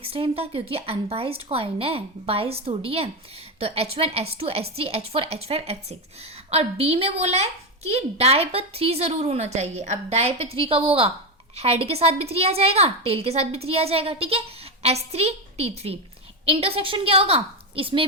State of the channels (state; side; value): normal; both; correlation 0.11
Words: टाइम था, क्योंकि अनबाइज्ड कॉइन है, बाइज थोड़ी है। तो H1 H2 H3 H4 H5 H6। और बी में बोला है कि डाई पर 3 जरूर होना चाहिए। अब डाई पे 3 कब होगा? हेड के साथ भी 3 आ जाएगा, टेल के साथ भी 3 आ जाएगा। ठीक है, S3 T3। इंटरसेक्शन क्या होगा?